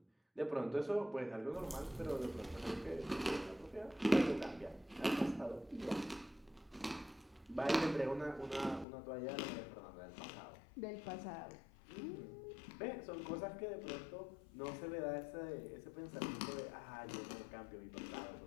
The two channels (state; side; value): drops out; right; at 8.8 s